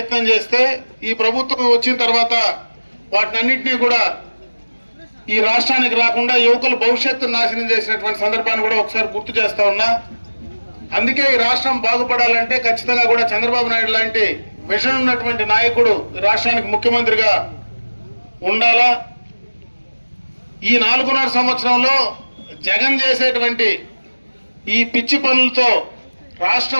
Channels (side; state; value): both; inverted; correlation -1.00